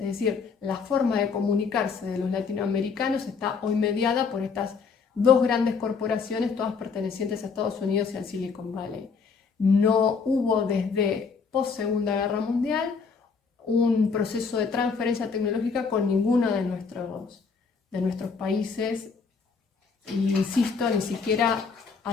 decir, la forma de comunicarse de los latinoamericanos está hoy mediada por estas dos grandes corporaciones, todas pertenecientes a Estados Unidos y al Silicon Valley. No hubo desde post-Segunda Guerra Mundial un proceso de transferencia tecnológica con ninguno de nuestros países, y insisto, ni siquiera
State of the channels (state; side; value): quieter; right; 5.3 dB